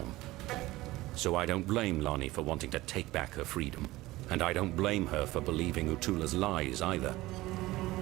So I don't blame Lonnie for wanting to take back her freedom, and I don't blame her for believing Utula's lies either.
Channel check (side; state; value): left; quieter; 18.4 dB